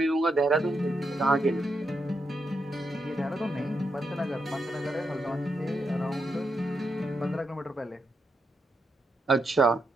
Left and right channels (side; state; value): both; normal; correlation 0.82